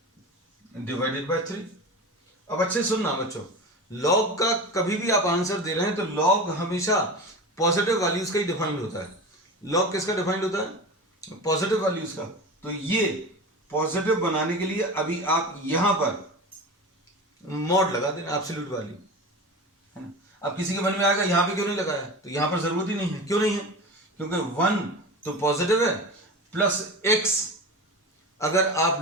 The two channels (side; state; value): both; normal; correlation 0.29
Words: डिवाइडेड बाय 3। अब अच्छे सुनना बच्चों, log का कभी भी आप आंसर दे रहे हैं तो log हमेशा पॉजिटिव वैल्यूज का ही डिफाइंड होता है। log किसका डिफाइंड होता है, पॉजिटिव वैल्यूज का। तो ये पॉजिटिव बनाने के लिए अभी आप यहां पर मॉड लगा देना, एब्सोल्यूट वैल्यू है ना। अब किसी के मन में आएगा यहां पे क्यों नहीं लगाया, तो यहां पर जरूरत ही नहीं है। क्यों नहीं है, क्योंकि 1 तो पॉजिटिव है, प्लस x अगर